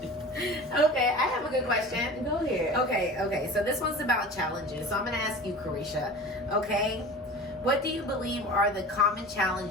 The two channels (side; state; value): both; normal; correlation 0.37